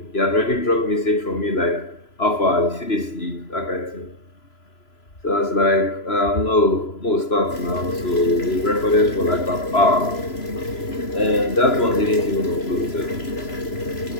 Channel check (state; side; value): late; right; 3.0 ms